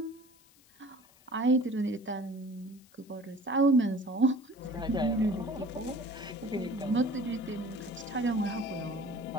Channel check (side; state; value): left; noise; hiss, 28 dB below the sound